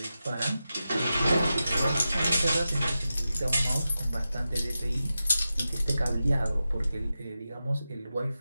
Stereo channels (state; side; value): inverted; both; correlation -0.92